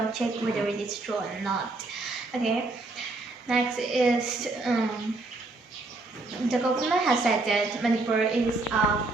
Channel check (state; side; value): quieter; left; 3.2 dB